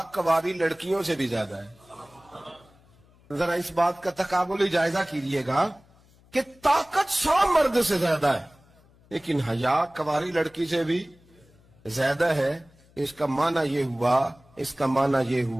کواری لڑکیوں سے بھی زیادہ ہے. ذرا اس بات کا تقابلی جائزہ کیجئے گا کہ طاقت 100 مرد سے زیادہ ہے لیکن حیا کواری لڑکی سے بھی زیادہ ہے. اس کا معنی یہ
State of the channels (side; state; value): left; noise; hum, 29 dB below the sound